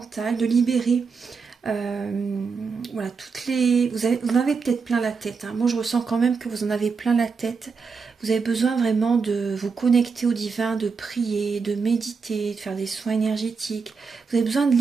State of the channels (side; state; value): left; quieter; 5.2 dB